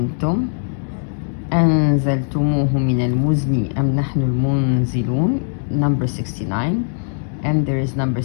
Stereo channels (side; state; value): right; silent; 66 dB below the other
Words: أنزلتموه من المزن أم نحن المنزلون, number 69, and there is number